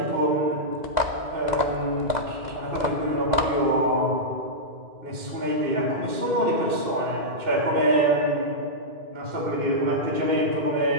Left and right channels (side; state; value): left; late; 2.0 ms